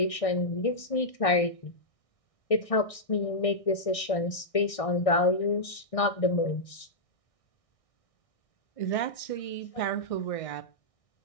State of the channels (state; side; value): late; right; 1.6 ms